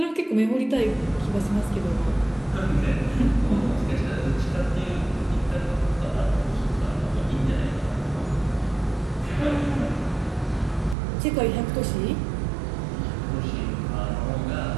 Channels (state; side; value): drops out; left; at 11.0 s